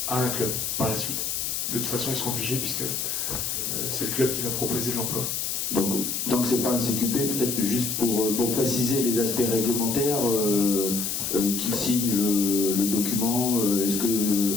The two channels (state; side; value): noise; left; hiss, 2 dB below the sound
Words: à un club par la suite. De toute façon, ils seront obligés puisque c'est le club qui va proposer l'emploi. Donc c'est pas un CQP, peut-être juste pour préciser les aspects réglementaires, qui signe le document, est-ce